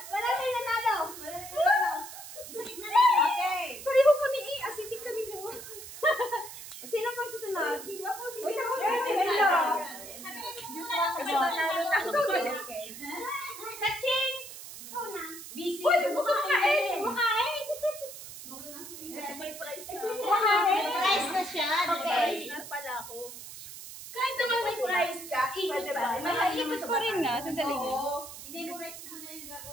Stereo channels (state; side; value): noise; right; hiss, 12 dB below the sound